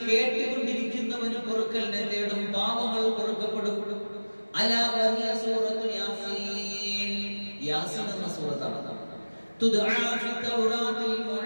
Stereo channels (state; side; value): inverted; both; correlation -1.00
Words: കേട്ടുകൊണ്ടിരിക്കുന്നവന് പൊറുക്കലിനെ തേടും, പാപങ്ങൾ പൊറുക്കപ്പെടും. അലാ വഹിയ സൂറത്തു യാസീൻ, യാസീൻ എന്ന സൂറത്താണ്. തുദ്ആ ഫി തൗറാത്തിൽ